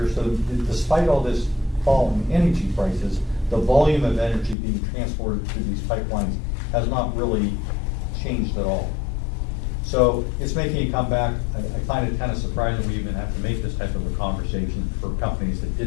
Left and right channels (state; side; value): drops out; right; at 4.5 s